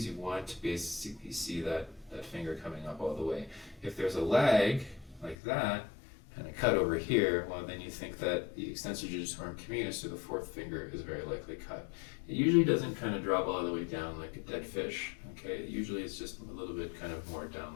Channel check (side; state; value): right; drops out; at 5.4 s